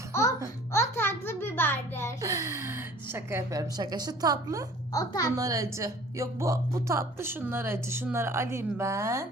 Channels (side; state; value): both; normal; correlation 0.49